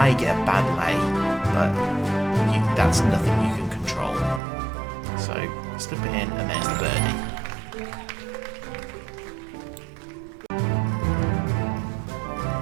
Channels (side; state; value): left; drops out; at 4.4 s